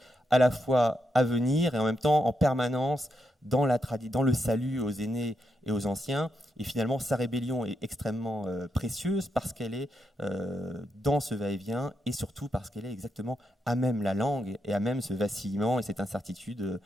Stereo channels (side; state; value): both; normal; correlation 0.82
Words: à la fois à venir et en même temps en permanence dans le salut aux aînés et aux anciens. Et finalement, sa rébellion est extrêmement précieuse parce qu'elle est dans ce va-et-vient et surtout parce qu'elle est exactement à même la langue et à même ce vacillement et cette incertitude